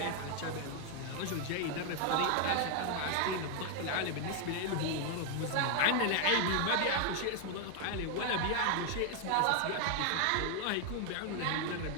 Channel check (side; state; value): both; different; correlation 0.00